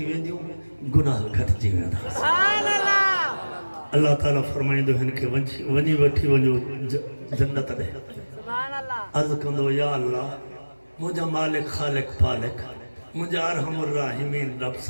وے دیوں گناہ گھٹ جی وے دا اللہ تعالیٰ فرمائیں دو ہن کے ونی وٹھی ونجو جنت دے عرض کندو یا اللہ مجھا مالک خالق پالک مجھا ارحم الراحمین رب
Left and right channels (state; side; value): inverted; both; correlation -1.00